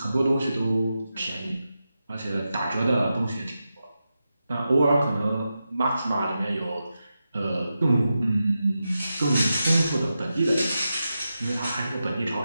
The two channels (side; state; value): both; inverted; correlation -0.90